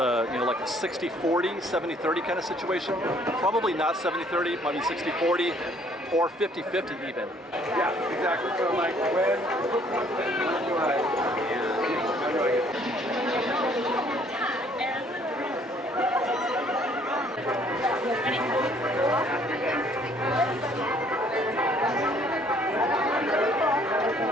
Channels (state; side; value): normal; both; correlation 0.61